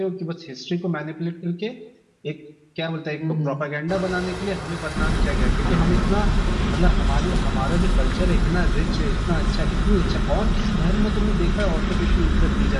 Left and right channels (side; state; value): both; identical; correlation 1.00